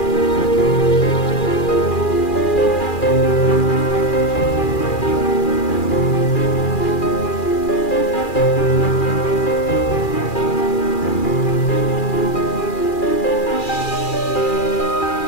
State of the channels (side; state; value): right; late; 2.4 ms